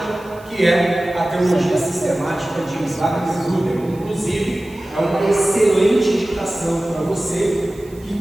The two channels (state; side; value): noise; right; hiss, 26 dB below the sound